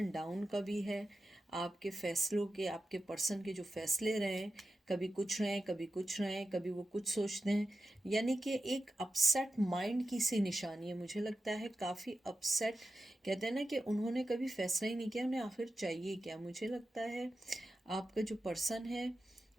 डाउन का भी है। आपके फैसलों के, आपके पर्सन के जो फैसले रहे हैं, कभी कुछ रहें, कभी कुछ रहें, कभी वो कुछ सोचते हैं, यानी कि एक अपसेट माइंड की सी निशानी है। मुझे लगता है काफ़ी अपसेट, कहते हैं ना कि उन्होंने कभी फैसला ही नहीं किया उन्हें आखिर चाहिए क्या। मुझे लगता है आपका जो पर्सन है,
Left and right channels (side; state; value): both; normal; correlation 0.92